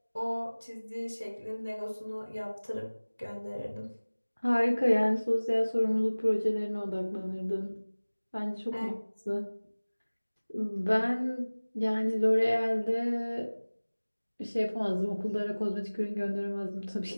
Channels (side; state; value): both; inverted; correlation -1.00